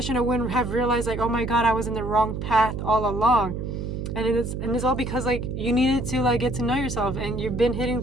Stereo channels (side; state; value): right; noise; hum, 5 dB below the sound